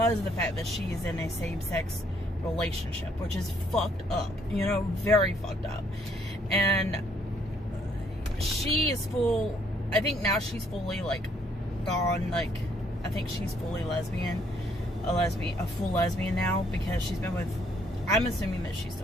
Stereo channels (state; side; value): normal; both; correlation 0.67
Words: of the fact that she is in a same-sex relationship, which is fucked up, you know, very fucked up. And she is full, I think now she's fully like gone, like I think she's fully lesbian, a full lesbian now, because she's been with, I'm assuming that she's